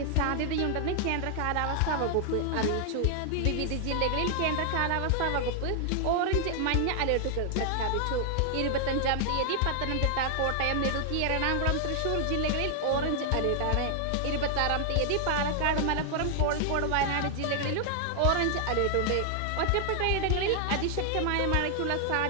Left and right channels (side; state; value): both; different; correlation 0.00